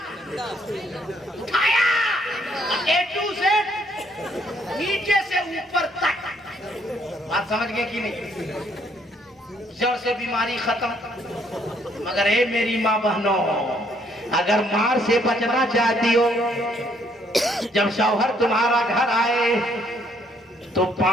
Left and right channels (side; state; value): both; normal; correlation 0.68